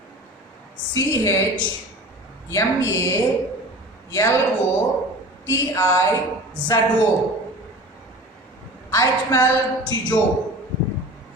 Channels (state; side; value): normal; both; correlation 0.38